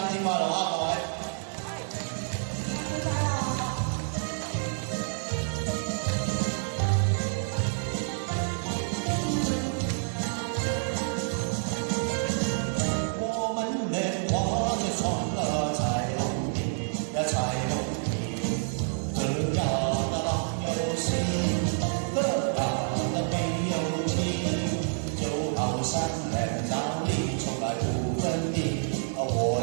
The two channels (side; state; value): left; silent; 59 dB below the other